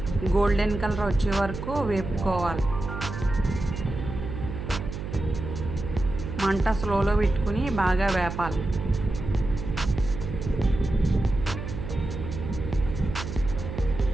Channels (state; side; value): noise; right; hum, 7 dB below the sound